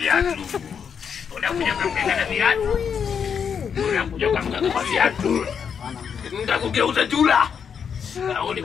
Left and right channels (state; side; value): quieter; right; 7.1 dB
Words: Udah punya kamera viatu. Udah punya kamera viatu. Nggak kugeuza jula. Kau ni